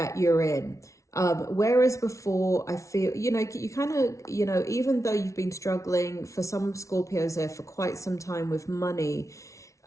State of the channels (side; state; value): right; late; 0.15 ms